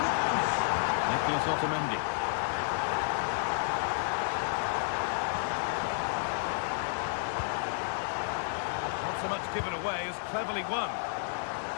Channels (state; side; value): silent; right; 57 dB below the other